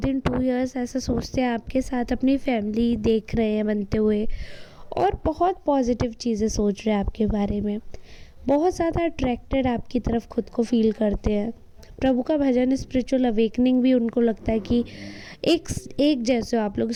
इन 2 इयर्स ऐसा सोचते हैं आपके साथ अपनी फैमिली देख रहे हैं बनते हुए, और बहुत पॉजिटिव चीज़ें सोच रहे हैं आपके बारे में, बहुत ज़्यादा अट्रैक्टेड आपकी तरफ खुद को फील करते हैं। प्रभु का भजन, स्पिरिचुअल अवेकनिंग भी उनको लगता है कि एक जैसे हो आप लोग,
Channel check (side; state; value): both; identical; correlation 1.00